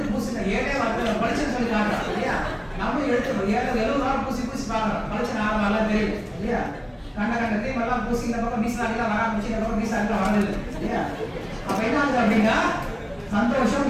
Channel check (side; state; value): both; identical; correlation 1.00